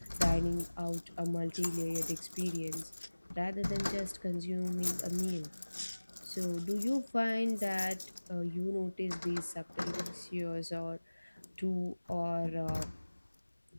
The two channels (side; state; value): both; inverted; correlation -1.00